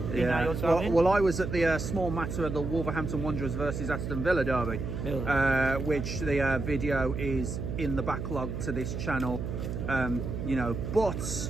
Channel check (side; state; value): right; noise; hum, 4 dB below the sound